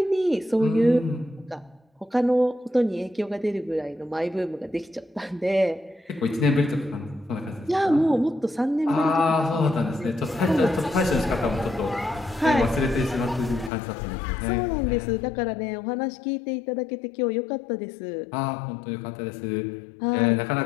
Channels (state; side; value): drops out; right; at 13.7 s